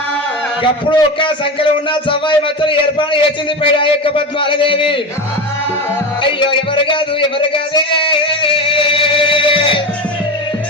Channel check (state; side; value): normal; both; correlation 0.22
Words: అప్పుడు ఒక సంకలం ఉన్న చవ్వాయి మచ్చలు ఏర్పాటు చేసింది పైన ఆ యొక్క పద్మాలదేవి. అయ్యో ఎవరు కాదు